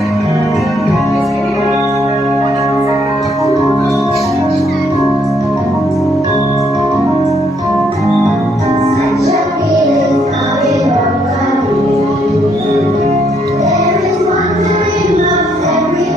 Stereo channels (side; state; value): both; normal; correlation 0.71